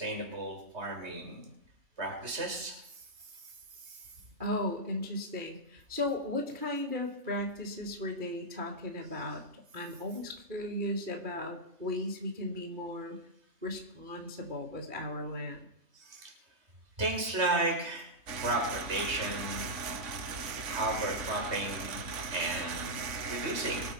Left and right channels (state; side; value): late; left; 3.2 ms